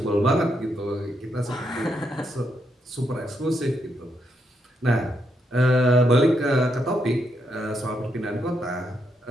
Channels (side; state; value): both; normal; correlation 0.79